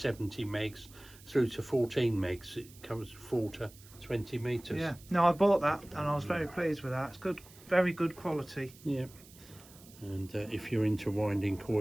megs through to 14 megs. It covers 4 to 20 meters. Yeah. No, I bought that and I was very pleased with that. It's good, very good quality. Yeah. And if you're into winding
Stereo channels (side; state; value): right; noise; hiss, 22 dB below the sound